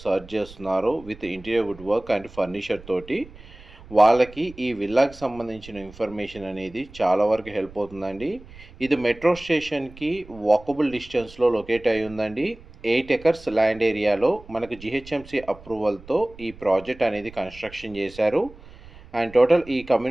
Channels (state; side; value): noise; right; rumble, 20 dB below the sound